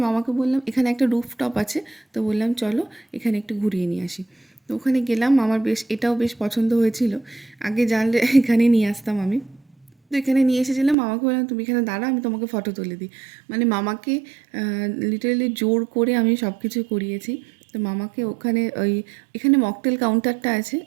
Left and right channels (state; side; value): drops out; left; at 11.0 s